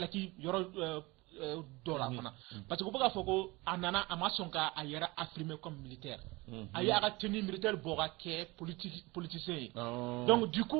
yoro dollar parce que boga foko anana amasonka ayera affirmé comme militaire ayera tenue militaire boga ke politicien donc du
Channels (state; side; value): quieter; left; 22.9 dB